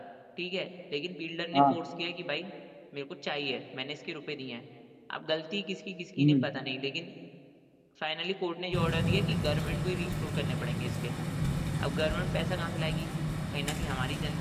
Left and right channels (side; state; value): both; identical; correlation 1.00